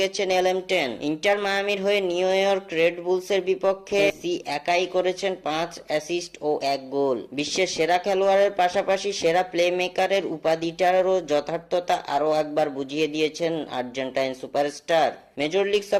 গেছেন এলএম10। ইন্টার মায়ামির হয়ে নিউ ইয়র্ক রেড বুলসের বিপক্ষে মেসি একাই করেছেন 5 অ্যাসিস্ট ও 1 গোল। বিশ্বের সেরা খেলোয়াড়ের পাশাপাশি সেরা প্লেমেকারের উপাধিটারও যথার্থতা আরও একবার বুঝিয়ে দিয়েছেন আর্জেন্টাইন সুপারস্টার। মেজর লিগ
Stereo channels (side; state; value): both; identical; correlation 1.00